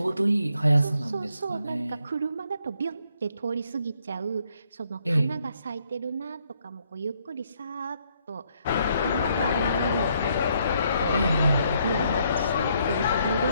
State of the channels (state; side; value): inverted; both; correlation -0.72